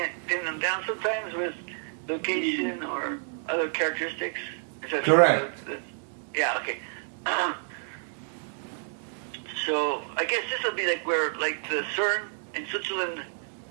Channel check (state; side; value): silent; left; 56 dB below the other